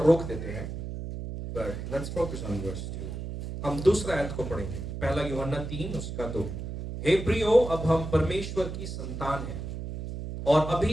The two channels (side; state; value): right; noise; hum, 7 dB below the sound